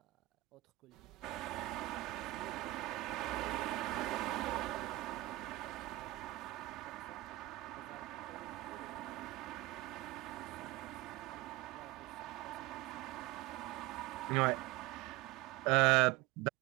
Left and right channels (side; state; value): left; quieter; 18.7 dB